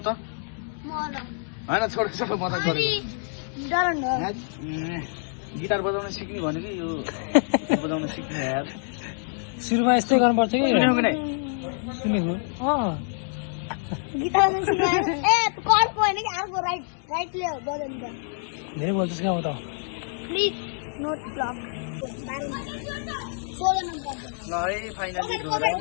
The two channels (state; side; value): silent; right; 61 dB below the other